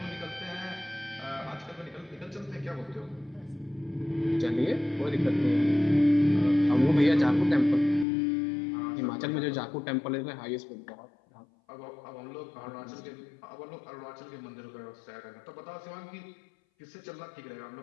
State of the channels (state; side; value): drops out; right; at 8.1 s